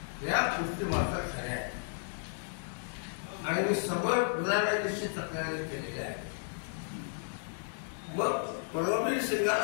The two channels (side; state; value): right; silent; digital silence